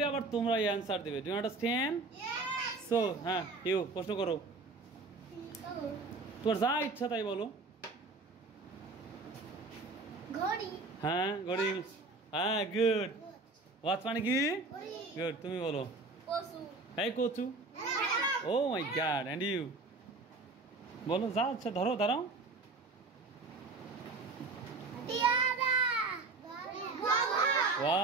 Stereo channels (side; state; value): left; quieter; 3.7 dB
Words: আবার তোমরা অ্যানসার দেবে। Do you understand? সো হ্যাঁ, ইউ প্রশ্ন করো, তোমার যা ইচ্ছা তাই বলো। ঘড়ি। হ্যাঁ, ঘড়ি। হ্যাঁ, গুড। ওয়াচ মানে কি? গুড, তুমি বলো। পশু। এই কচু। ও মাই গড, এন্ড ইউ বলো যা আচ্ছা, ধরো দাঁড়াও। টিয়ারা।